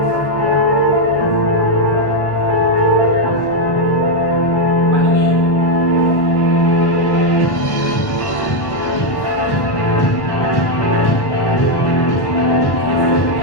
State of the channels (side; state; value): right; late; 1.3 ms